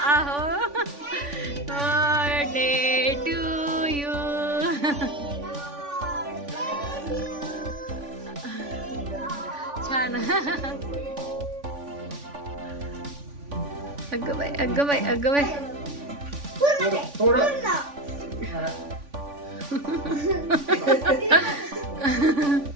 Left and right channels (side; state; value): left; late; 3.5 ms